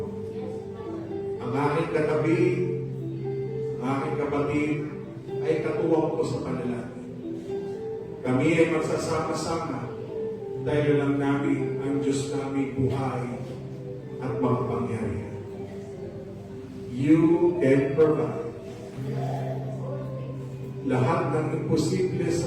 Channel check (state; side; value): identical; both; correlation 1.00